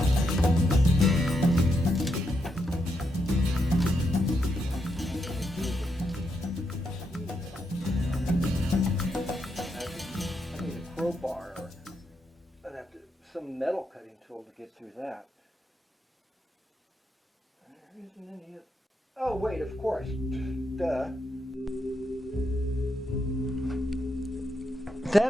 I need a crowbar, or I'd have to some metal cutting tool to get through that. There isn't any. Oh, wait, of course. Duh.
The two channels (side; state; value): both; normal; correlation 0.81